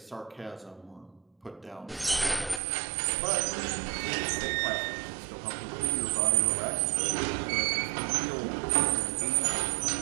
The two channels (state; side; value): drops out; left; at 2.6 s